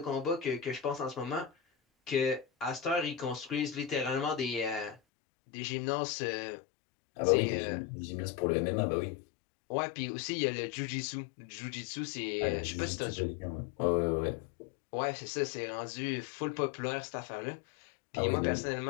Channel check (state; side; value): drops out; right; at 5.0 s